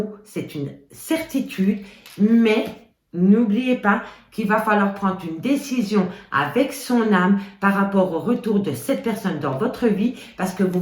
c'est une certitude. Mais n'oubliez pas qu'il va falloir prendre une décision avec son âme par rapport au retour de cette personne dans votre vie parce que vous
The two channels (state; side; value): identical; both; correlation 1.00